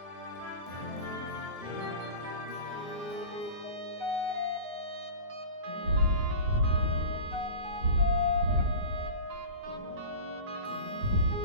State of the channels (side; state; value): left; late; 9.4 ms